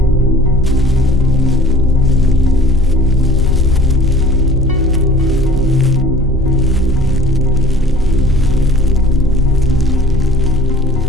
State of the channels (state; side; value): normal; both; correlation 0.47